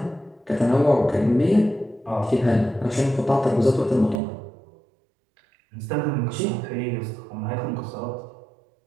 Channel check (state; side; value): drops out; left; at 4.2 s